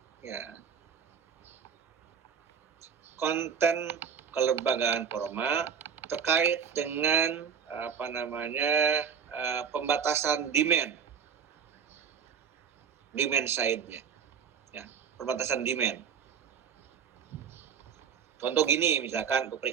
ya. Konten kelembagaan formal terkait dengan pembatasan demand side-nya, ya, pembatasan demand. Contoh gini, misalkan untuk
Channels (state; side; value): quieter; left; 7.0 dB